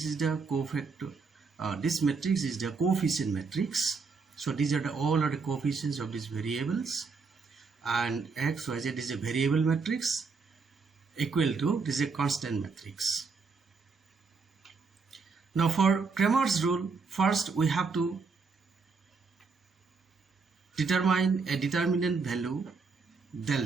is the cofactor. This matrix is the coefficient matrix. So these are all the coefficients of these variables, and x, y, z is a variable matrix equal to this is a constant matrix. Now for Cramer's rule, first we have to determine a determinant value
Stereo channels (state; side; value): quieter; left; 4.8 dB